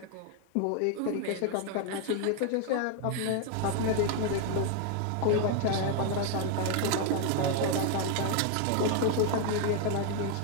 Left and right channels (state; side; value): different; both; correlation 0.01